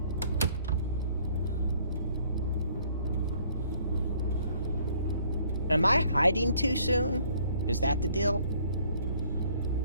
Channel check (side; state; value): both; inverted; correlation -0.61